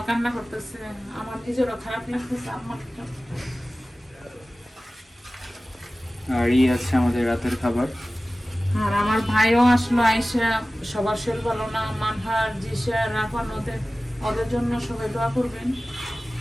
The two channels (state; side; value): normal; both; correlation 0.97